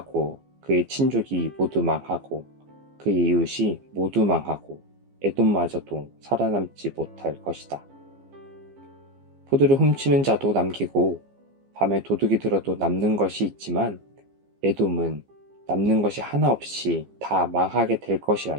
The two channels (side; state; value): left; late; 15 ms